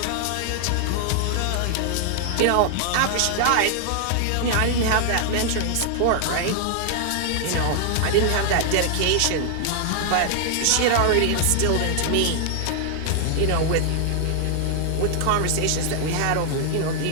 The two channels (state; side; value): different; both; correlation 0.00